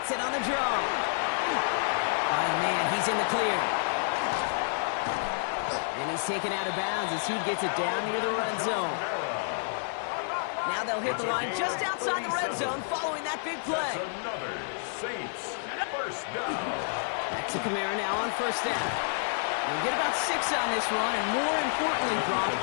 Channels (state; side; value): silent; right; digital silence